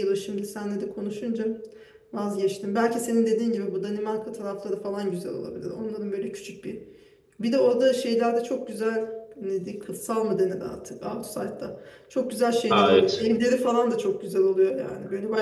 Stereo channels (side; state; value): both; identical; correlation 1.00